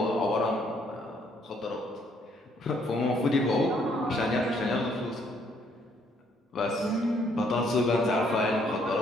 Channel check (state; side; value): normal; both; correlation 0.68